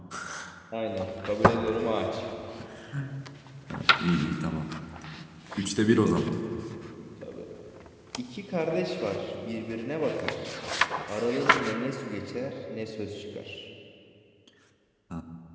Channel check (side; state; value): both; identical; correlation 1.00